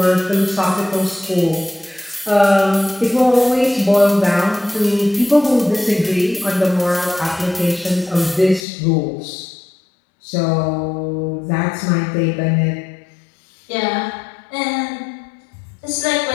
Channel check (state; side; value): drops out; right; at 8.7 s